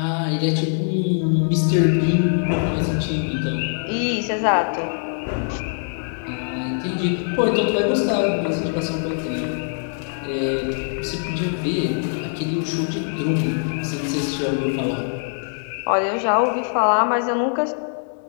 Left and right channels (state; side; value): silent; right; digital silence